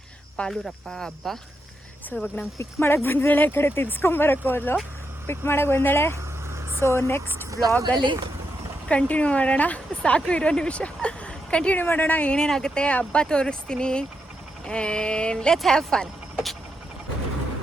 ಪಾಲೂರಪ್ಪ ಹಬ್ಬ. ಸೊ ಇವಾಗ ನಂಗೆ ಪಿಕ್ ಮಾಡೋಕ್ಕೆ ಬಂದಿದ್ದಾಳೆ. ಈ ಕಡೆ ತಿರ್ಸ್ಕೊಂಬರಕ್ಕೆ ಹೋದ್ಲು, ಪಿಕ್ ಮಾಡೋಕ್ಕೆ ಬಂದಾಳೆ. ಸೊ ನೆಕ್ಸ್ಟ್ ವ್ಲಾಗಲ್ಲಿ ಕಂಟಿನ್ಯೂ ಮಾಡೋಣ. ಸಾಕು, ಇರೋ ನಿಮಿಷ ಕಂಟಿನ್ಯೂ ಮಾಡೋಣ. ಏನೇನಾಗುತ್ತೆ ಹಬ್ಬ ತೋರಿಸ್ತೀನಿ. And let's have fun.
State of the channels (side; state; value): both; normal; correlation 0.83